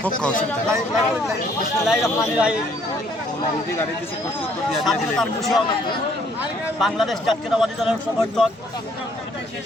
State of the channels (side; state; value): both; normal; correlation 0.64